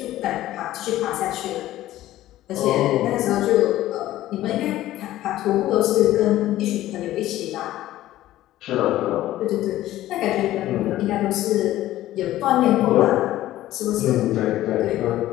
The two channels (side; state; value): right; quieter; 14.6 dB